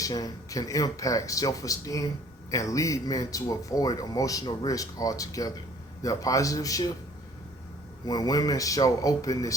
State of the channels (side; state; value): both; normal; correlation 0.54